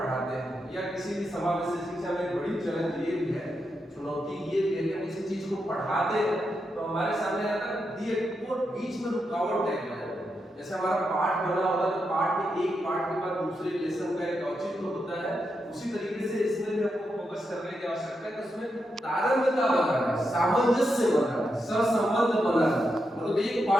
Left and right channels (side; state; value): both; normal; correlation 0.85